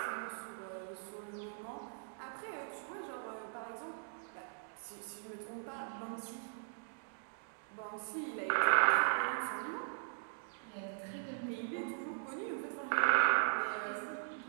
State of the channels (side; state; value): left; silent; digital silence